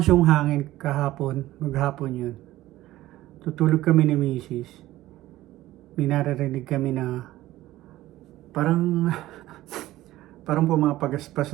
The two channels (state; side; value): quieter; left; 15.9 dB